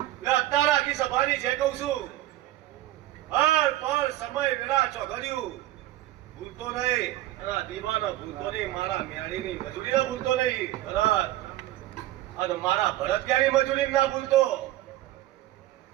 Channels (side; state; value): left; quieter; 15.4 dB